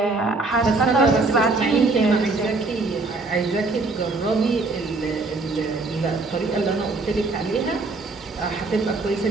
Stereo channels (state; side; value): quieter; left; 3.6 dB